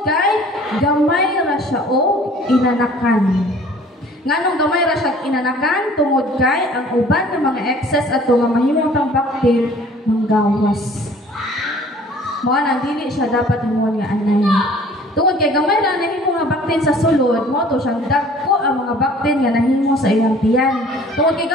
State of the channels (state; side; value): normal; both; correlation 0.51